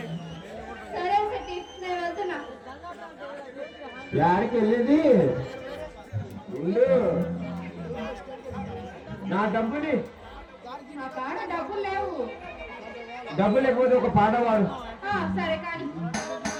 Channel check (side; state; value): both; identical; correlation 1.00